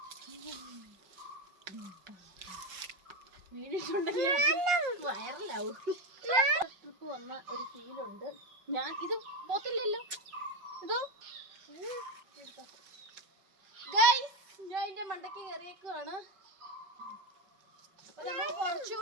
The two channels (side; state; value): left; late; 5.3 ms